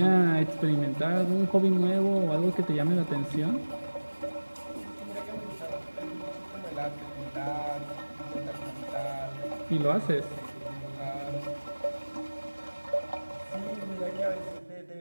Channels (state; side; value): inverted; both; correlation -1.00